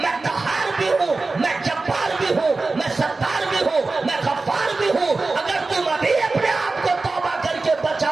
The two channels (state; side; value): quieter; left; 3.6 dB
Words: قہار بھی ہوں، میں جبار بھی ہوں، میں ستار بھی ہوں، میں غفار بھی ہوں۔ اگر تم ابھی اپنے آپ کو توبہ کر کے